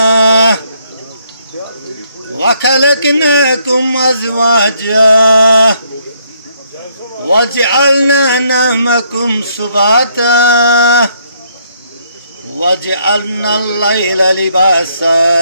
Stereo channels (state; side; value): inverted; both; correlation -0.70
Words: व खलक़नाकुम अज़वाजा वजअलना नौमकुम सुबाता वजअलना अल-लैला लिबासा